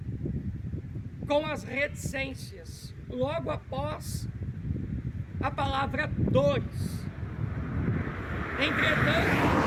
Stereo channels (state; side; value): identical; both; correlation 1.00